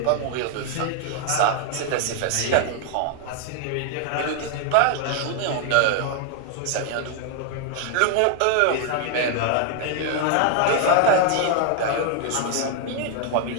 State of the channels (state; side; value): different; both; correlation 0.00